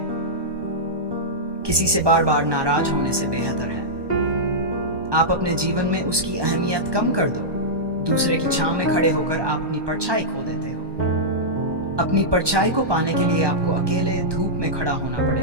किसी से बार बार नाराज होने से बेहतर है आप अपने जीवन में उसकी अहमियत कम कर दो। दूसरे की छांव में खड़े होकर आप अपनी परछाई खो देते हो। अपनी परछाई को पाने के लिए आपको अकेले धूप में खड़ा होना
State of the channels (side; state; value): left; late; 1.2 ms